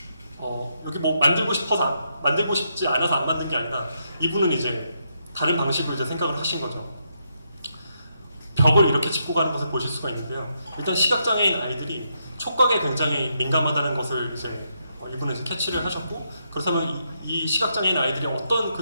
여기 뭐 만들고 싶지 않아서 안 만든 게 아니라 이분은 이제 다른 방식으로 이제 생각을 하신 거죠. 벽을 이렇게 짚고 가는 것을 보실 수가 있는데요. 일단 시각장애인 아이들이 촉각에 굉장히 민감하다는 것을 이제 이분은 이제 캐치를 하셨고, 그렇다면 이 시각장애인 아이들이 어떤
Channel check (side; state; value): both; inverted; correlation -0.79